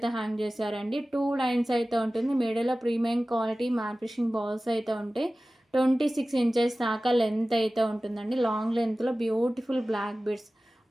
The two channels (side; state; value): both; normal; correlation 0.97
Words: హ్యాంగ్ చేశారండి. 2 లైన్స్ అయితే ఉంటుంది. మిడిల్లో premium quality matte finishing balls అయితే ఉంటాయి. 26 ఇంచెస్ దాకా లెంత్ అయితే ఉంటుందండి. లాంగ్ లెంత్లో beautiful black beads,